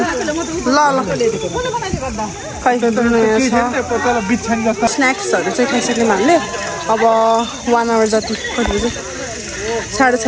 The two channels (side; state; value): both; identical; correlation 1.00